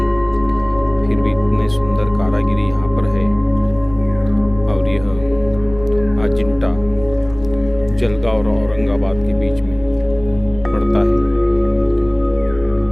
फिर भी इतने सुंदर कारीगरी यहाँ पर है। और यह अजंता जलगांव और औरंगाबाद के बीच में पड़ता है।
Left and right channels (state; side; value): noise; left; rumble, 15 dB below the sound